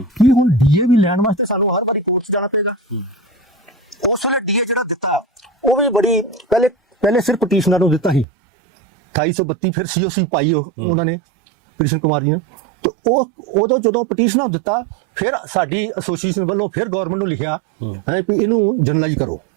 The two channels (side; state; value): left; drops out; at 8.2 s